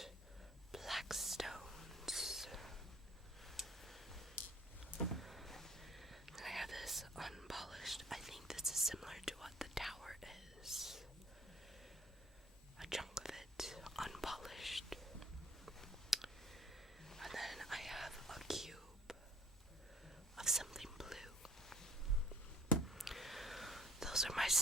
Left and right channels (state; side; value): normal; both; correlation 0.55